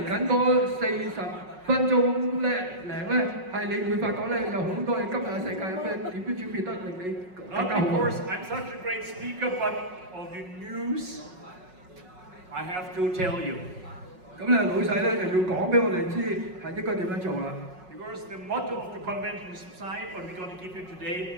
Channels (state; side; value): late; left; 5.4 ms